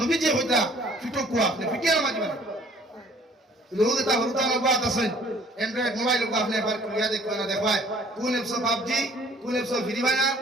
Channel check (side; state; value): both; normal; correlation 0.56